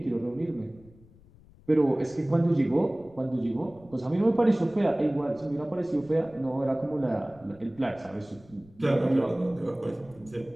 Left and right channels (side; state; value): left; noise; rumble, 25 dB below the sound